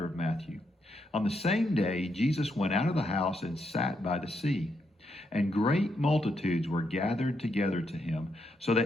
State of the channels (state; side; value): normal; both; correlation 0.79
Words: of Matthew. On the same day, Jesus went out of the house and sat by the sea. And great multitudes were gathered together to him, so